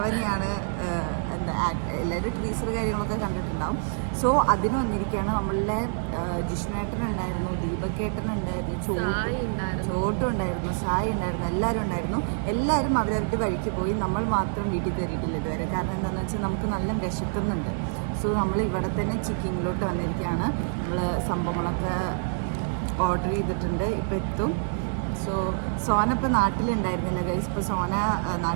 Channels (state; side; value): silent; left; digital silence